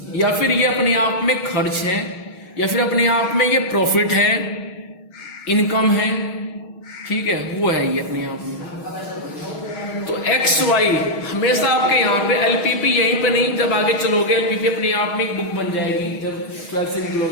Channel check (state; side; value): late; right; 6.4 ms